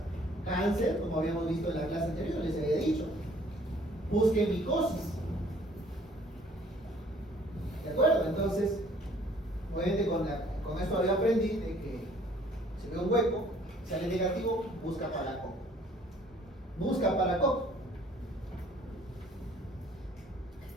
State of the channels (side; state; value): both; normal; correlation 0.58